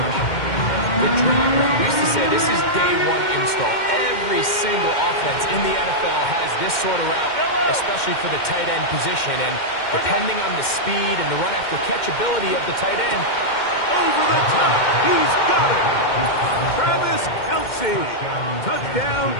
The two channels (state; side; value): late; right; 2.1 ms